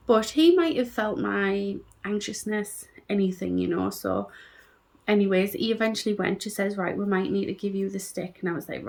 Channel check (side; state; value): both; identical; correlation 1.00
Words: But he might have felt my anxiousness, anything. So anyways, he eventually went. She says, right, we might need to give you the stick. And I was like,